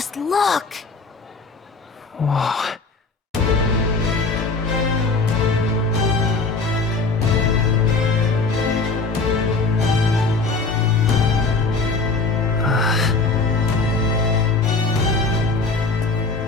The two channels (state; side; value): quieter; right; 3.8 dB